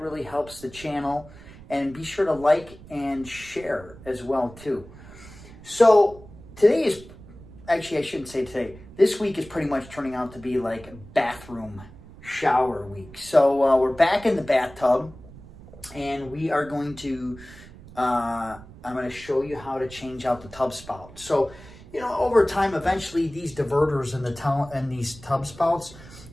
really helps the channel. And be sure to like and share as well, too. So today is, actually I shouldn't say today, this week is pretty much turning out to be like bathroom shower week. So we're back in the bathtub and we are going to, I'm going to show you how to change out the tub spout. So, you know, over time, eventually these diverters and these tub spouts,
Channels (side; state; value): right; noise; rumble, 19 dB below the sound